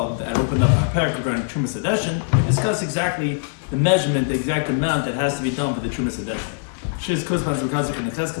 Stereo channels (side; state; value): right; silent; 64 dB below the other